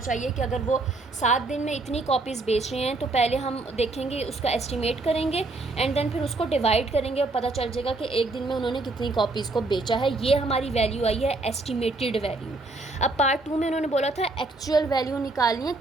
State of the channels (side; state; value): left; quieter; 3.1 dB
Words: कि अगर वो 7 दिन में इतनी कॉपीज़ बेच रहे हैं तो पहले हम देखेंगे, उसका एस्टिमेट करेंगे एंड देन फिर उसको डिवाइड करेंगे और पता चल जाएगा कि एक दिन में उन्होंने कितनी कॉपीज़ को बेचा है। ये हमारी वैल्यू आई है, एस्टिमेटेड वैल्यू। अब पार्ट 2 में उन्होंने बोला था एक्चुअल वैल्यू निकालनी है